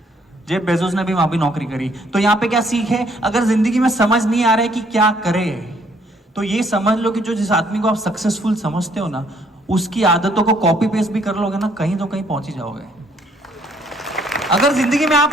जेफ बेजोस ने भी वहां भी नौकरी करी। तो यहाँ पे क्या सीख है? अगर जिंदगी में समझ नहीं आ रहा है कि क्या करे, तो ये समझ लो कि जो जिस आदमी को आप सक्सेसफुल समझते हो ना, उसकी आदतों को कॉपी पेस्ट भी कर लोगे ना, कहीं तो कहीं पहुंच ही जाओगे। अगर जिंदगी में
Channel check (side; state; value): both; normal; correlation 0.66